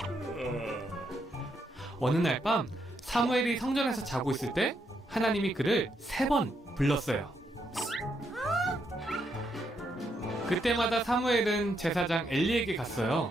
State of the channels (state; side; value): normal; both; correlation 0.78